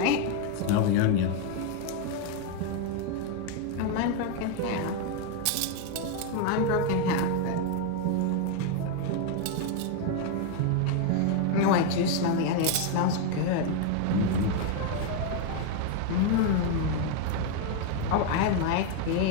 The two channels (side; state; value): both; different; correlation 0.01